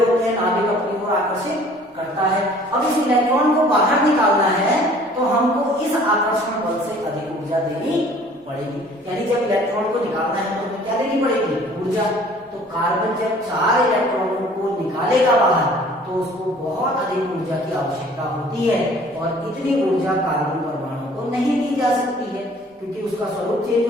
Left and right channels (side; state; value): both; normal; correlation 0.52